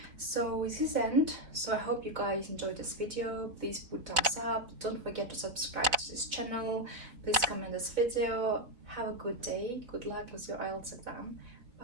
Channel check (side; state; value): left; late; 4.0 ms